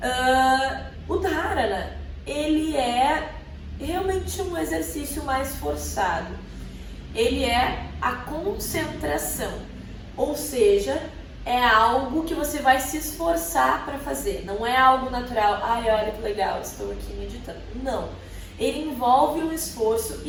O Dharana, ele é realmente um exercício mais forçado. Ele é a concentração, ou seja, é algo que você vai se esforçar para fazer. Não é algo natural. Ai, olha que legal, estou aqui meditando. Não. Ele envolve um esforço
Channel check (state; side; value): identical; both; correlation 1.00